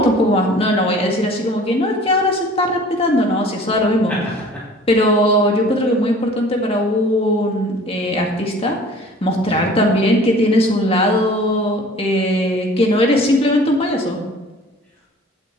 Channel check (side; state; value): both; normal; correlation 0.47